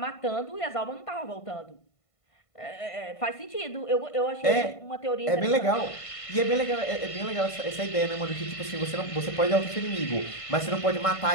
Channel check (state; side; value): late; right; 1.5 ms